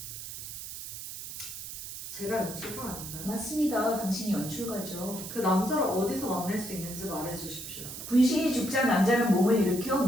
제가 연출가 아닌가요? 맞습니다. 당신이 연출가죠. 그 남자를 어디서 만날 수 있는지 말해주십시오. 분신이 죽자 남자는 몸을 일으켜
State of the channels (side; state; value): right; noise; hiss, 9 dB below the sound